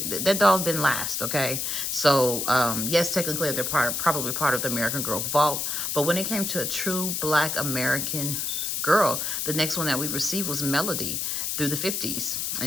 that dolls didn't last, okay? So, yes, technically they're probably part of the American Girl vault. But when it came to a true Black American girl, the next one that we received was Melody through the 50s.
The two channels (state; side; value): noise; left; hiss, 1 dB below the sound